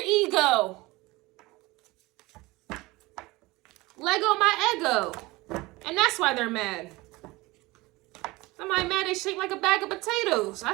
ego. Lego my ego. And that's why they're mad. Somebody mad they shaped like a bag of potatoes. I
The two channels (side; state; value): left; quieter; 21.4 dB